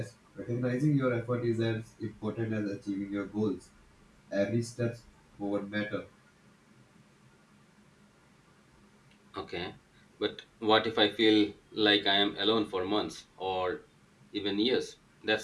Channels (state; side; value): identical; both; correlation 1.00